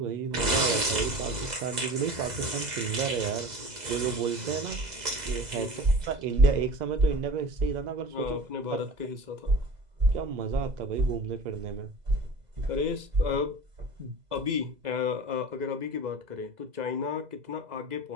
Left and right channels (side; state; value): left; late; 2.0 ms